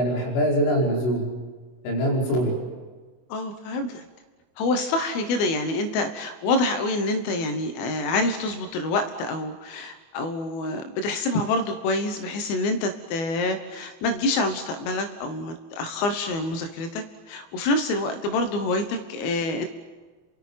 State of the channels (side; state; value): right; late; 24 ms